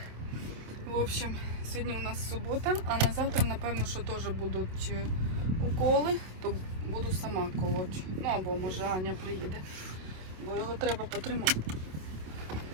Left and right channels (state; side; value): late; left; 27 ms